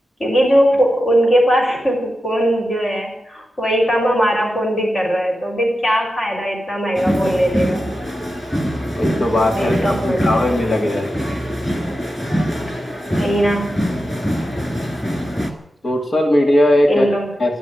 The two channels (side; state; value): both; normal; correlation 0.91